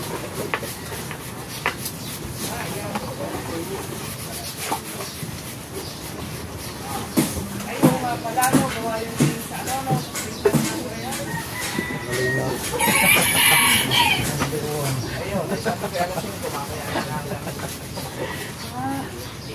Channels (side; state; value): both; identical; correlation 1.00